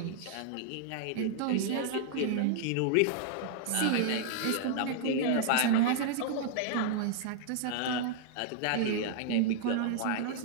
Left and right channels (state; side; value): different; both; correlation -0.01